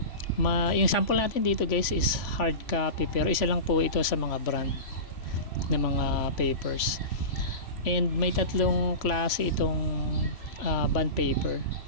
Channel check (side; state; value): right; late; 3.0 ms